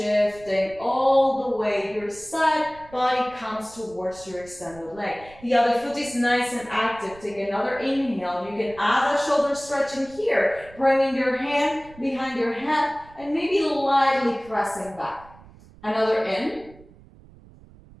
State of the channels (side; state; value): right; noise; rumble, 22 dB below the sound